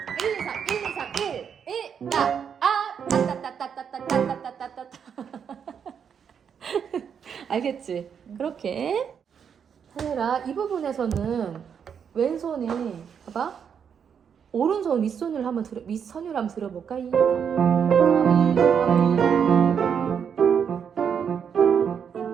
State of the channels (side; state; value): left; quieter; 7.4 dB